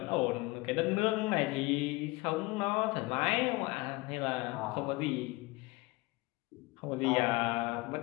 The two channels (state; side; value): quieter; right; 23.1 dB